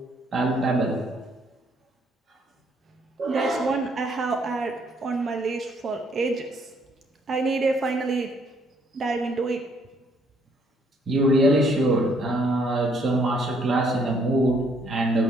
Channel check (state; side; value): normal; both; correlation 0.67